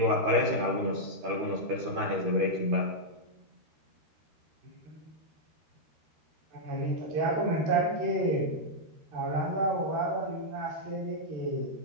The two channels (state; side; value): late; left; 13 ms